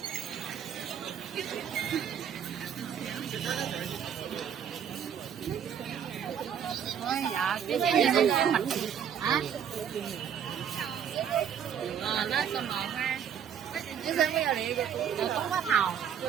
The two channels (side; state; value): left; quieter; 8.5 dB